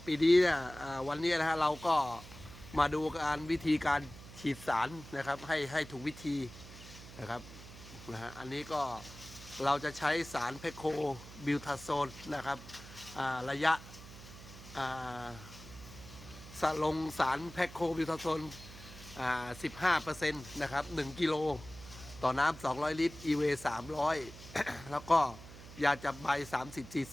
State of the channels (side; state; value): right; noise; hum, 16 dB below the sound